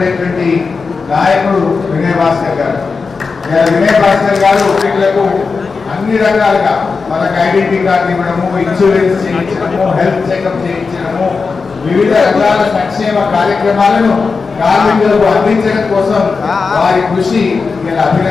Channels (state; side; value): quieter; right; 4.7 dB